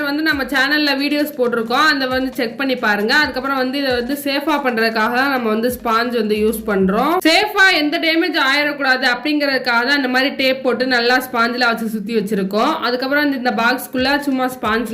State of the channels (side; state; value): both; identical; correlation 1.00